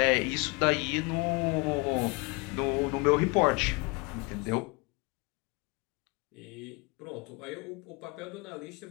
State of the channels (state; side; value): quieter; right; 27.9 dB